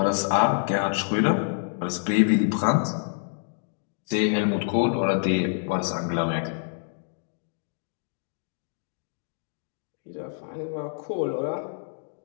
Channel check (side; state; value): right; silent; digital silence